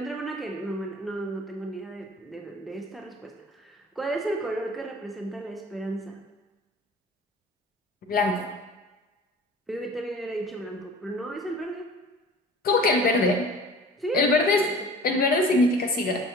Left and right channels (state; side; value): normal; both; correlation 0.44